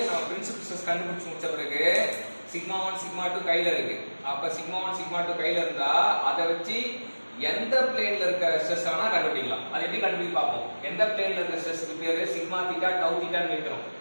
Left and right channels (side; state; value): both; inverted; correlation -1.00